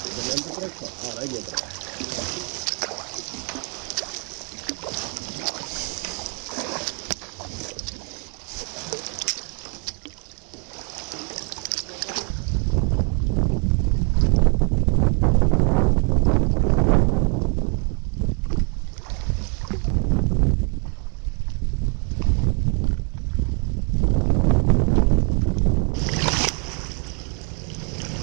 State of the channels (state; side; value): quieter; left; 38.7 dB